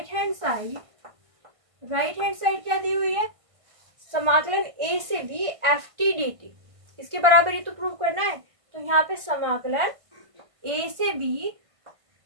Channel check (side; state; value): left; late; 1.5 ms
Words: हैंड साइड क्या दी हुई है, समाकलन a से b F T D T, इसके बराबर ही तो प्रूव करना है। तो यहाँ पे समाकलन a से b